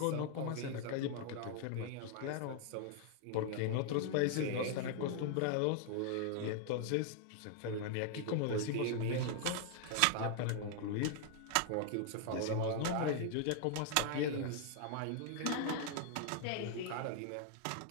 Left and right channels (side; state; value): both; different; correlation 0.00